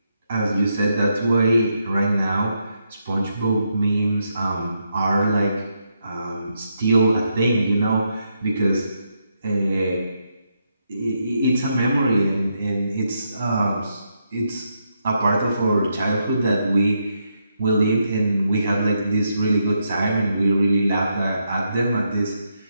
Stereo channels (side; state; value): both; inverted; correlation -0.80